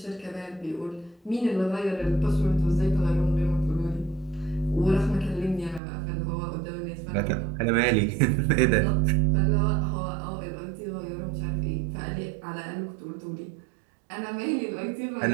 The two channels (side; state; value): left; drops out; at 5.8 s